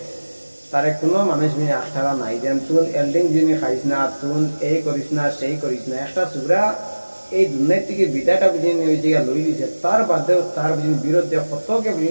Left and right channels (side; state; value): both; inverted; correlation -1.00